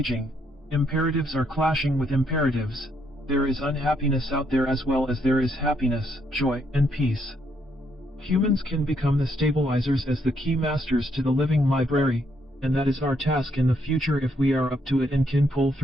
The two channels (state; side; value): normal; both; correlation 0.73